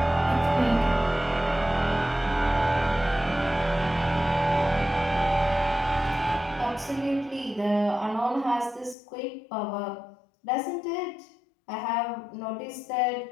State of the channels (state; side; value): drops out; right; at 9.0 s